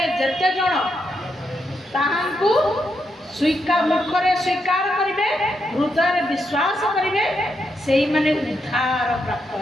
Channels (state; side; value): normal; both; correlation 0.81